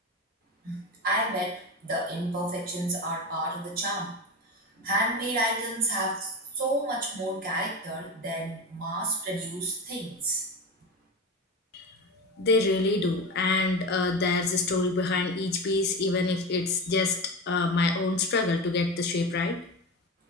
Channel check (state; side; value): normal; both; correlation 0.24